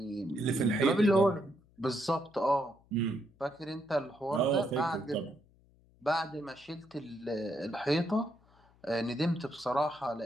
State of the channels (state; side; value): noise; left; hum, 30 dB below the sound